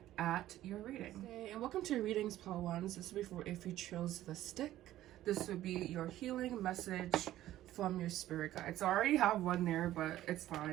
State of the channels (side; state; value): left; quieter; 13.9 dB